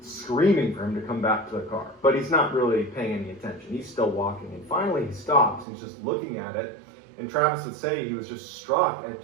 screaming for him to come back to the car. But he's not really paying any attention. He's still walking. And finally he stops. He's just looking at it. And Travis would say he was just struck at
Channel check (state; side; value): drops out; left; at 5.7 s